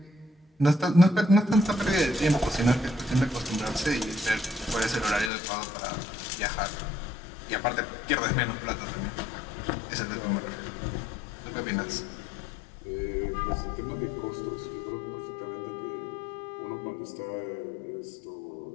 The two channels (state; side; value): drops out; right; at 5.3 s